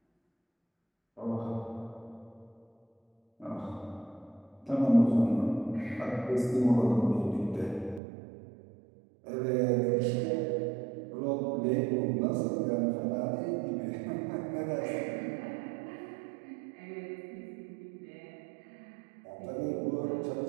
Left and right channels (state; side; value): drops out; left; at 8.0 s